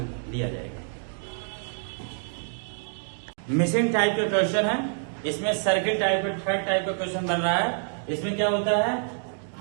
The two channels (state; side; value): silent; left; 60 dB below the other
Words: दिया जाएगा। मिसिंग टाइप का क्वेश्चन है, इसमें सर्किल टाइप का थर्ड टाइप का क्वेश्चन बन रहा है। इसमें क्या होता है,